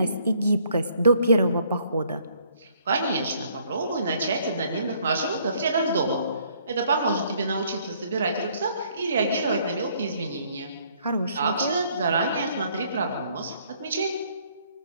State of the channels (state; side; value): inverted; both; correlation -0.64